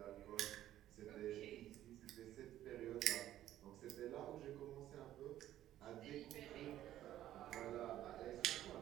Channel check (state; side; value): quieter; left; 12.8 dB